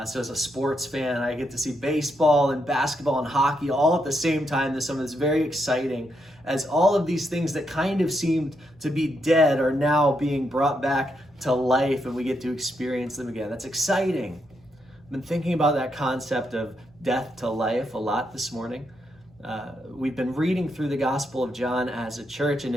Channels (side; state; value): both; normal; correlation 0.80